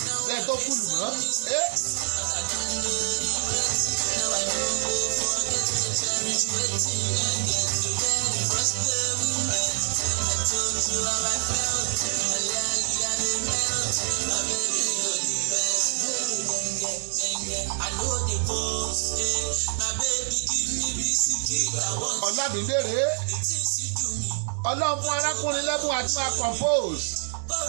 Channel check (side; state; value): left; silent; digital silence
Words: lẹ́yìn tó kú lù mọ́ Ọlámídé rèé Ọlọ́run fún arákùnrin lẹ́bùn àti máa compose